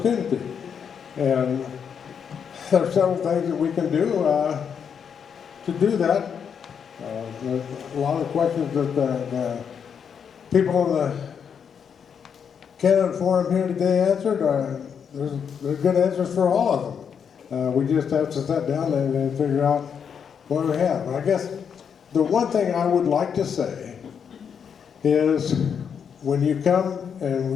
And there are several things that we can do to do that. There's a lot of questions that the people on the candidate forum here today answered. There's good answers for all of them. We just have to sit down and figure out what we have. And I guess the one thing I would like to say is when you come and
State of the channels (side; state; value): right; quieter; 7.2 dB